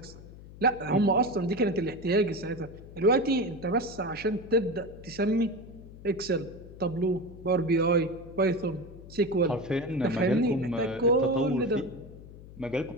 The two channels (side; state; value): left; noise; hum, 17 dB below the sound